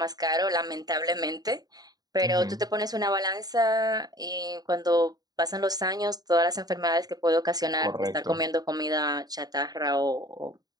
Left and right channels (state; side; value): late; left; 0.19 ms